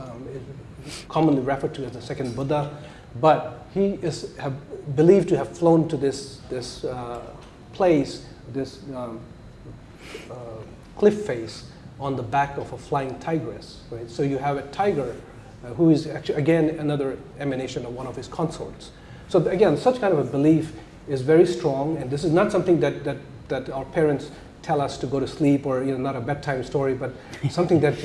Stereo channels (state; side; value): identical; both; correlation 1.00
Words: is commonly referred to as the second Buddha. But he is believed to have flown to this place, this cliff face on the back of a flying tigress, right? So you have a tiger who is actually, again, another emanation of one of his consorts. So again, such kind of a belief is very strong, and this is not something that our parents tell us to go to sleep, or not a bedtime story, but something that